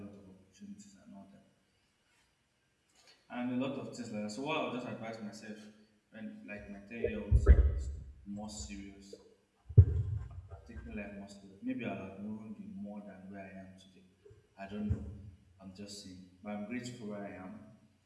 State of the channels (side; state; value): both; identical; correlation 1.00